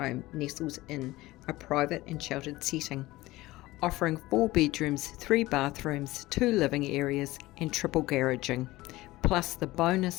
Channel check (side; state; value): right; quieter; 18.6 dB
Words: nestles in a private and sheltered setting, offering 4 bedrooms, 3 bathrooms, 2 living areas and triple garaging. Plus the